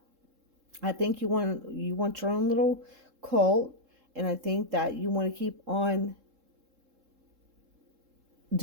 I think you want your own little cult, and I think that you want to keep on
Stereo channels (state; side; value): late; left; 3.7 ms